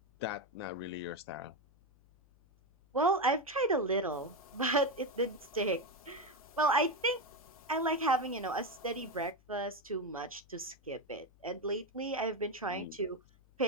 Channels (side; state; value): left; noise; hum, 29 dB below the sound